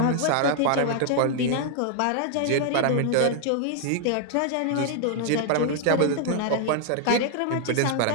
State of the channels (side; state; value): both; different; correlation 0.00